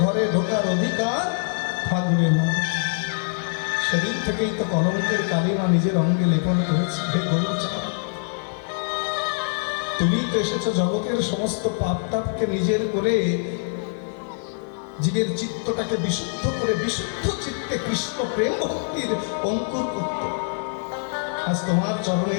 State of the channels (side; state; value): right; silent; digital silence